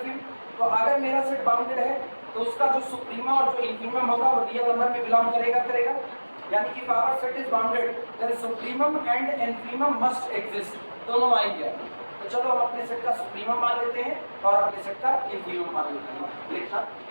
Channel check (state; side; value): inverted; both; correlation -1.00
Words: तो अगर मेरा सेट बाउंडेड है तो उसका जो सुप्रीमा और जो इंफीमम होगा वो रियल नंबर में बिलोंग करेगा। यानी कि power set is bounded there supremum and infimum must exist, दोनों आएंगे। तो चलो हम अपने सेट का सुप्रीमम मान लेते हैं और अपने सेट का इंफीमम मान लेते हैं। लिखना